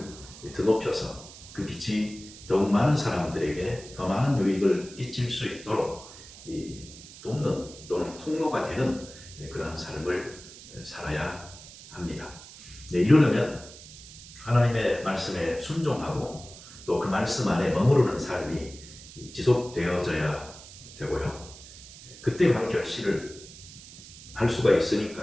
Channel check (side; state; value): right; noise; hiss, 17 dB below the sound